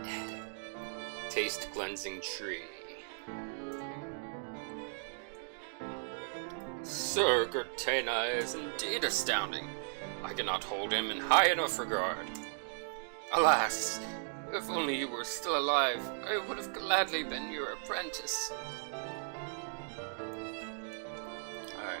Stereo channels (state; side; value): silent; left; digital silence